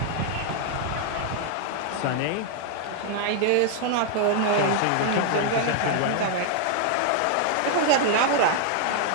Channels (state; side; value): different; both; correlation 0.00